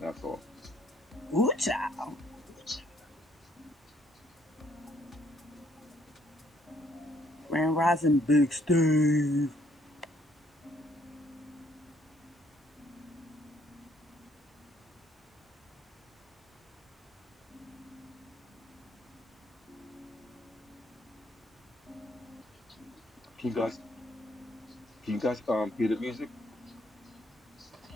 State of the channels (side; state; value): both; normal; correlation 0.67